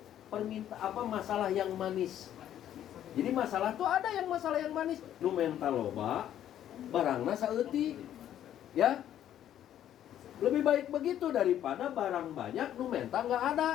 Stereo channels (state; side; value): quieter; right; 11.1 dB